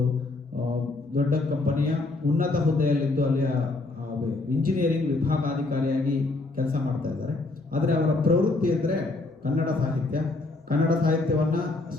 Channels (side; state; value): right; quieter; 3.2 dB